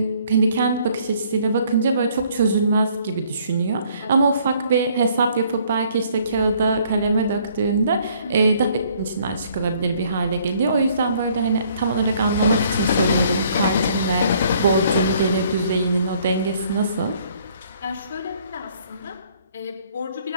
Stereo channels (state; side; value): inverted; both; correlation -0.62